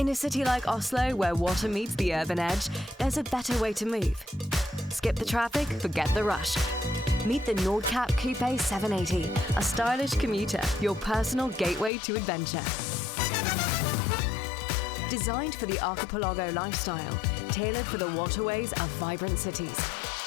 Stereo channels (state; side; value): drops out; right; at 11.9 s